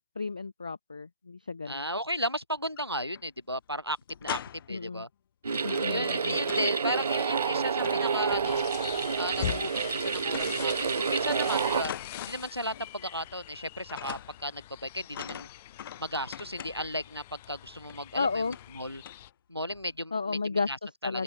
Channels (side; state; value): both; inverted; correlation -0.58